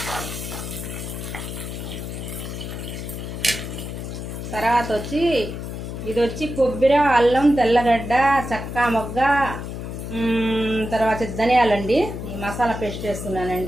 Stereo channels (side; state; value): left; noise; hum, 7 dB below the sound